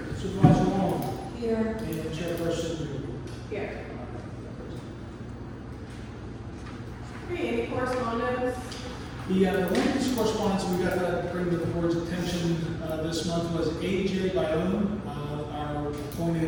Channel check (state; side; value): identical; both; correlation 1.00